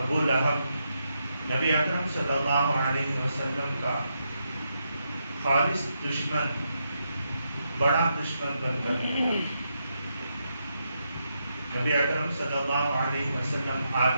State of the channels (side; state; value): both; inverted; correlation -0.82